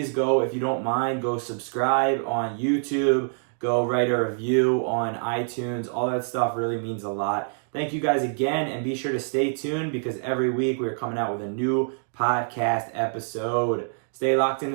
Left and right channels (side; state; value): left; silent; digital silence